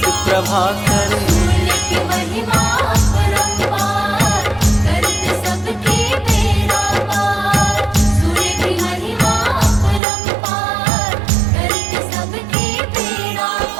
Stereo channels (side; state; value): left; drops out; at 10.0 s